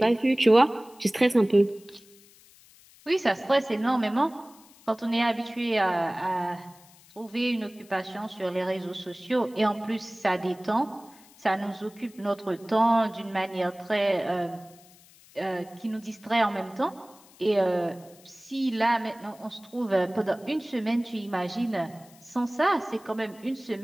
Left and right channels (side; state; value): left; noise; hiss, 25 dB below the sound